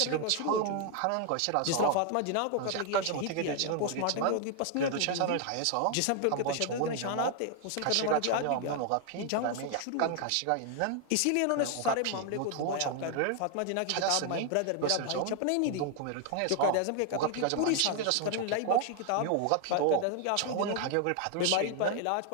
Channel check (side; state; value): both; different; correlation 0.00